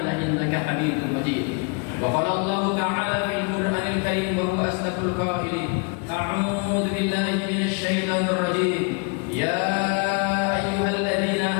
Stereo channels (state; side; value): quieter; right; 33.9 dB